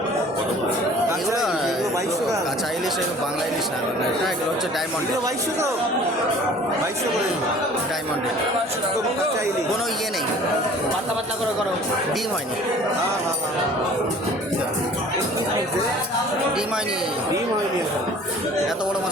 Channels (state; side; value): normal; both; correlation 0.48